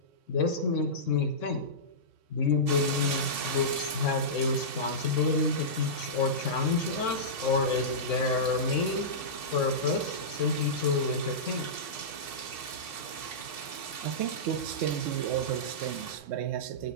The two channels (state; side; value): late; right; 3.6 ms